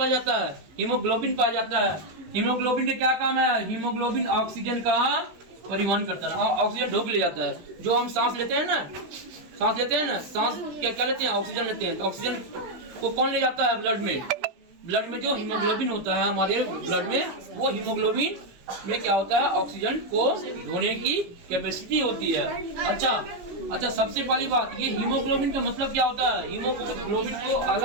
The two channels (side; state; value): left; late; 18 ms